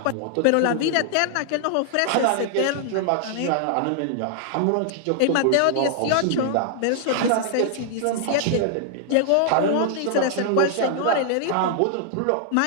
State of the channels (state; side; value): different; both; correlation -0.01